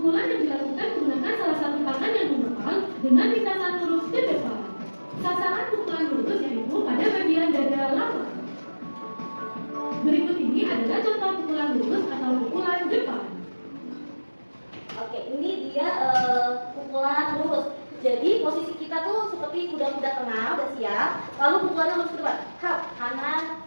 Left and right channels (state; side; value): inverted; both; correlation -1.00